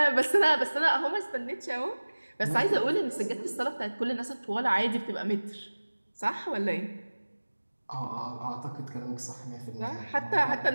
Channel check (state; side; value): inverted; both; correlation -1.00